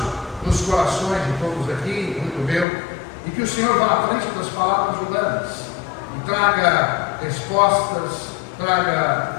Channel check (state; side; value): drops out; right; at 2.7 s